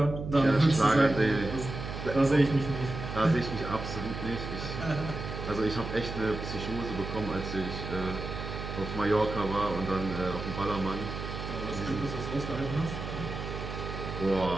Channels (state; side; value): noise; right; hum, 7 dB below the sound